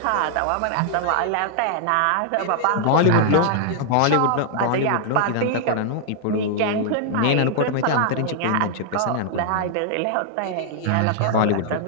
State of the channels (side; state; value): both; different; correlation -0.01